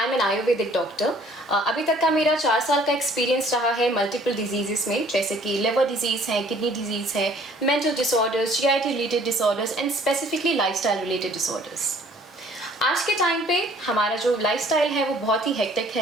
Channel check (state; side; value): normal; both; correlation 0.57